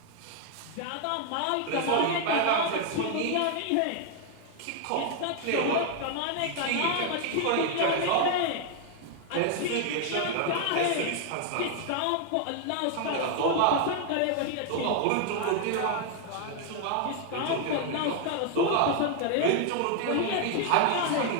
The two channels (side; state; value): both; different; correlation 0.00